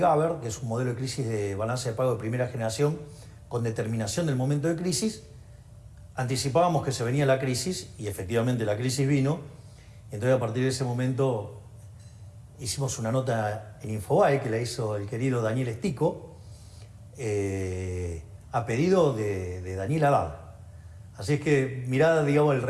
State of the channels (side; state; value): both; identical; correlation 1.00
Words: que es un modelo de crisis de balance de pago de primera generación, con determinación del momento de crisis, anticipábamos que se venía la crisis, y efectivamente la crisis vino. Entonces, a partir de ese momento, hicimos una nota en Infobae, que la hizo el querido Daniel Estico, a pedido de Daniel Haddad. Así es que mirá, digamos, el